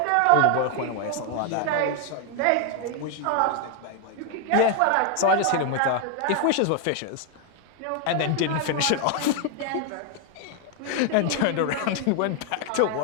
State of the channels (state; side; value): different; both; correlation 0.01